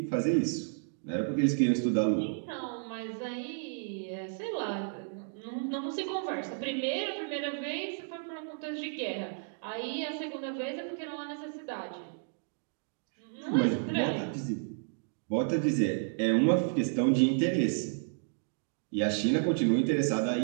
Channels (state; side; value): silent; left; digital silence